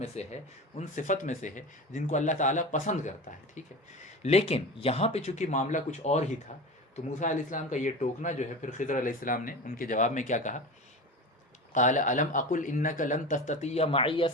سے ہے، ان صفت میں سے ہے جن کو اللہ تعالیٰ پسند کرتا ہے. ٹھیک ہے، لیکن یہاں پہ چونکہ معاملہ کچھ اور ہی تھا تو موسیٰ علیہ السلام کا یہ ٹوکنا جو ہے، پھر خضر علیہ السلام نے ان کے جواب میں کیا کہا، قال الم اقل انک لن تستطیع معی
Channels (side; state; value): both; normal; correlation 0.29